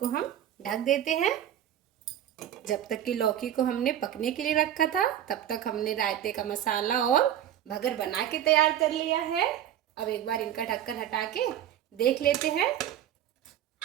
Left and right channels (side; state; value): left; quieter; 11.0 dB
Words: हम ढक देते हैं। जब तक कि लौकी को हमने पकने के लिए रखा था, तब तक हमने रायते का मसाला और भगर बना के तैयार कर लिया है। अब एक बार इनका ढक्कन हटा के देख लेते हैं।